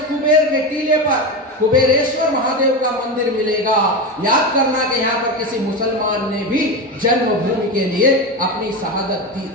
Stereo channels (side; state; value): both; normal; correlation 0.18